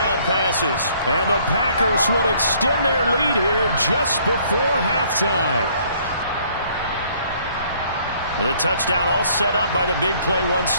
passes. And the Packers will extend their lead here just before halftime. The touchdown all set up by the big play one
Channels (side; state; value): both; inverted; correlation -0.62